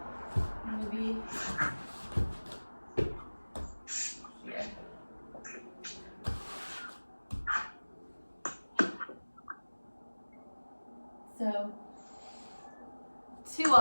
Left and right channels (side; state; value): both; inverted; correlation -1.00